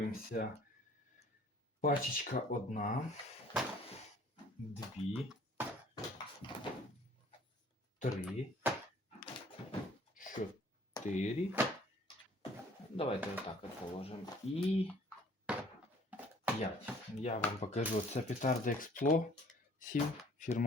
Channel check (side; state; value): both; normal; correlation 0.54